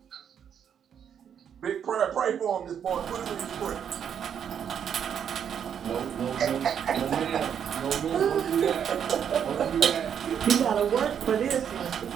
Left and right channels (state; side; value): quieter; left; 8.3 dB